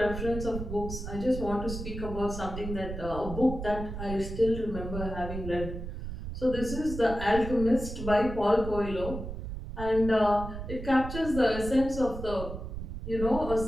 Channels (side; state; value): right; noise; rumble, 7 dB below the sound